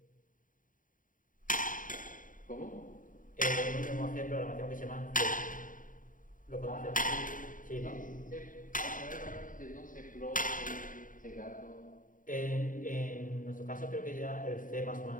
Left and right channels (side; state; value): right; late; 0.39 ms